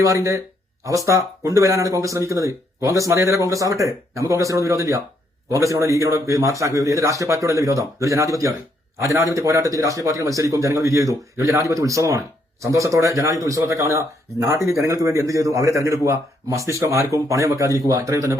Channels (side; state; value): both; normal; correlation 0.73